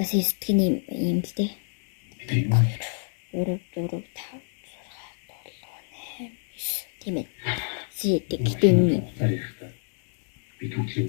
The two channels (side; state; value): right; silent; digital silence